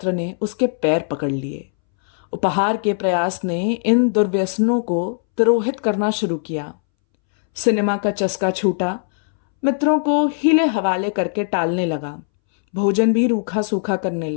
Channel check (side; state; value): right; silent; 65 dB below the other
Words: ने उसके पैर पकड़ लिए। उपहार के प्रयास ने इन दुर्व्यसनों को तिरोहित करना शुरू किया। सिनेमा का चस्का छूटा। मित्रों को हीले हवाले करके टालने लगा। भोजन भी रूखा सूखा करने